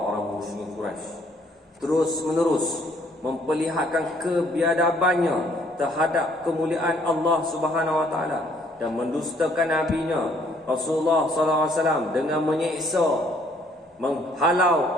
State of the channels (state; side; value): normal; both; correlation 0.64